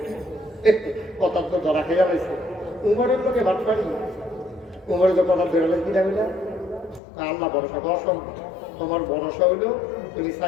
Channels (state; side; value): drops out; right; at 7.0 s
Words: কথা তো ধরা খেয়ে গেছে। উমরের লোকে ভাত পারি, উমরের তো কথা বেরোলে কি যাবে না? আল্লাহ ভরসা তো অসম্ভব। তোমার ভরসা হইলো তুমি